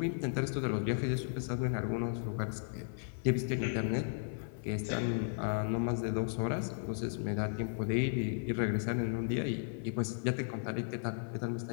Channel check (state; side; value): silent; right; 54 dB below the other